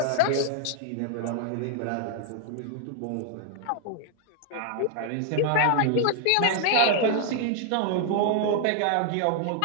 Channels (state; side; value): different; both; correlation 0.00